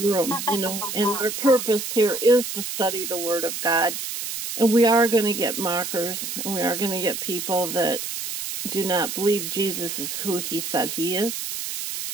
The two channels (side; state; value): right; noise; hiss, 5 dB below the sound